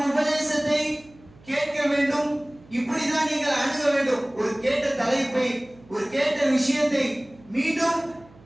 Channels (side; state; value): right; noise; hum, 26 dB below the sound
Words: உபதேசத்தை கேட்க வேண்டும், இப்படிதான் நீங்கள் அணுக வேண்டும். ஒரு கேட்ட தலைப்பை, ஒரு கேட்ட விஷயத்தை மீண்டும்